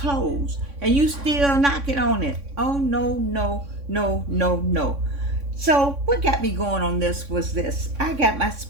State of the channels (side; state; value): left; late; 3.6 ms